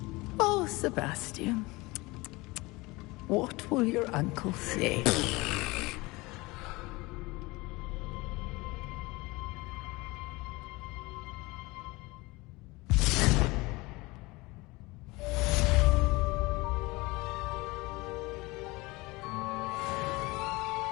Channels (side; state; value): right; quieter; 23.0 dB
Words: Oh, Sebastian. What will your uncle say?